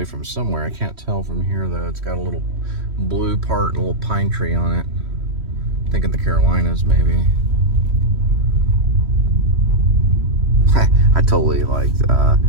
from somewhere. I can't tell from here, though. It's got a little blue part and a little pine tree on it. I think in the Carolinas, maybe. I totally liked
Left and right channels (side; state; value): left; late; 3.1 ms